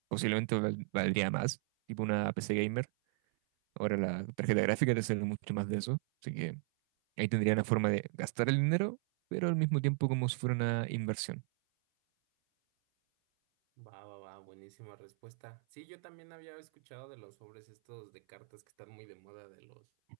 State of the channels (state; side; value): silent; left; 54 dB below the other